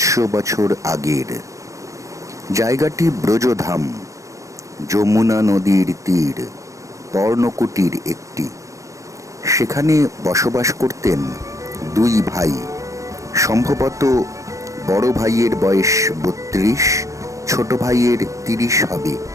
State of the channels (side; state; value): left; late; 0.16 ms